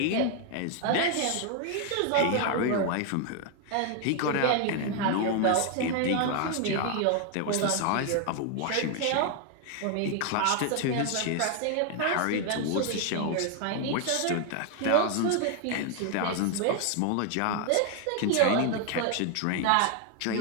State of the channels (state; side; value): different; both; correlation 0.01